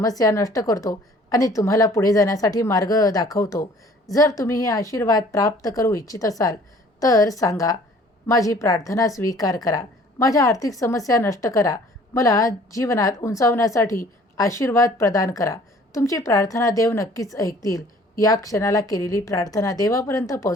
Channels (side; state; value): both; normal; correlation 0.53